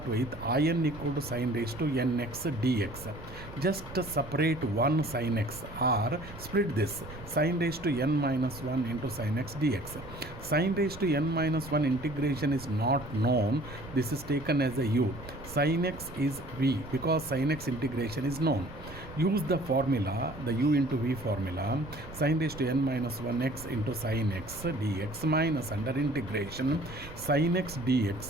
with in equal to sin raised to nx dx. Just separate one sin x, or split this sin raised to n minus 1 into sin x dx. Sin raised to n minus 1 integration is not known. This is taken as a u. Sin x is v because sin x integration is known. Use the formula, the u into v formula, sin raised to n minus 1x into sin x dx minus under integration sin x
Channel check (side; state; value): right; noise; rumble, 15 dB below the sound